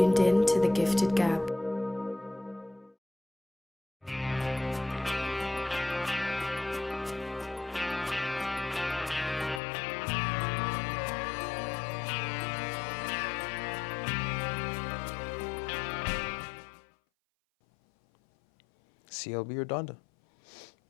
in to The Gifted Gab. CLB or Donda?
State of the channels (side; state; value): right; drops out; at 9.6 s